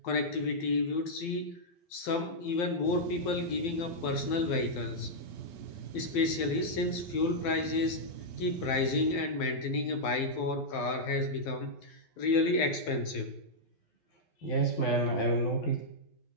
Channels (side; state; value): right; late; 12 ms